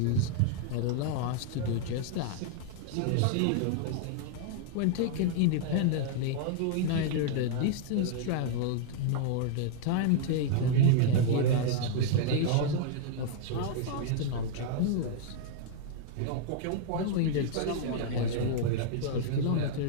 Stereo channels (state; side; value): different; both; correlation -0.01